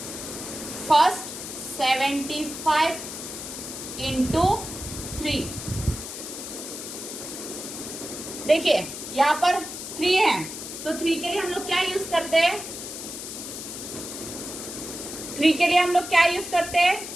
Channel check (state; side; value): noise; left; hiss, 9 dB below the sound